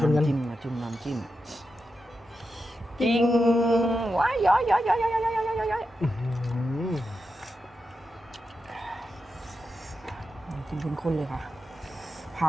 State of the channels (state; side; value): normal; both; correlation 0.89